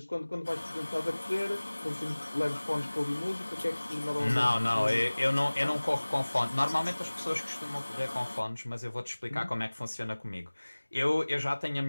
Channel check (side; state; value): both; inverted; correlation -1.00